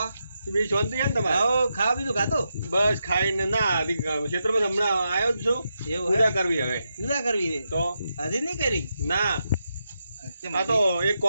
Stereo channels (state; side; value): inverted; both; correlation -0.85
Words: છે બીજી શાંતિ છે ને તમારે આવો ખાવા બીજું ખાતું બસ ખાઈને ના હજી ખેતરમાં હમણાં આવ્યો જ છું એવું પૂજા હે કરવી હવે પૂજા કરવી છે તો હજી નહીં કરી ના કેમ આ તો એક